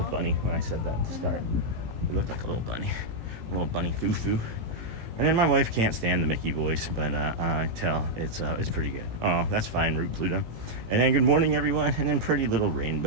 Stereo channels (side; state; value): left; late; 18 ms